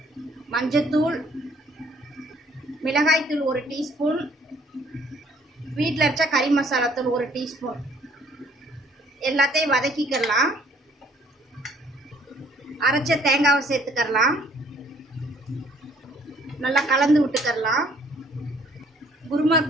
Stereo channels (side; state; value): both; normal; correlation 0.61